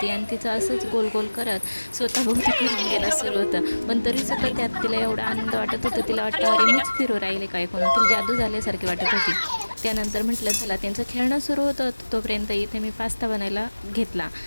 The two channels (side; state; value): both; inverted; correlation -1.00